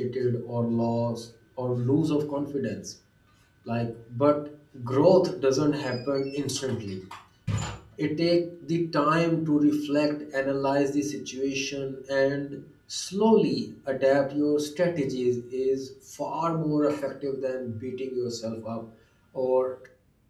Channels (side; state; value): both; identical; correlation 1.00